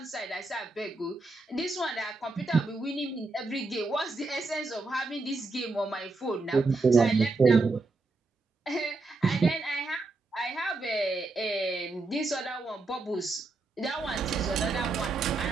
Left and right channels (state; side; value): quieter; left; 3.4 dB